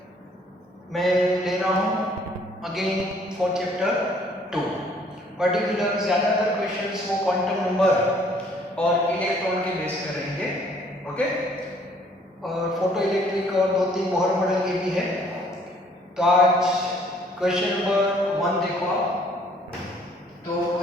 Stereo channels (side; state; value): both; normal; correlation 0.60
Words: मैं ले रहा हूँ अगेन फॉर चैप्टर 2। पर्टिकुलर ज़्यादातर क्वेश्चंस वो क्वांटम नंबर और इलेक्ट्रॉन के बेस पर रहेंगे, ओके। और फोटो इलेक्ट्रिक और दो तीन बोहर मॉडल के भी है। तो आज क्वेश्चन नंबर 1 देखो आप। तो